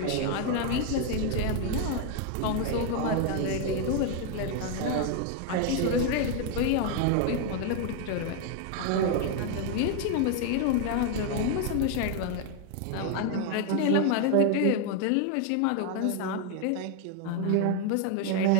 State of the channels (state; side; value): different; both; correlation 0.00